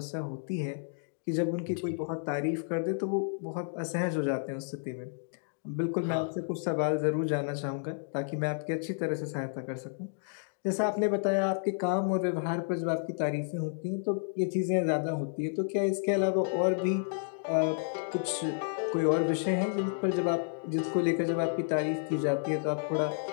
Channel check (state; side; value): silent; right; digital silence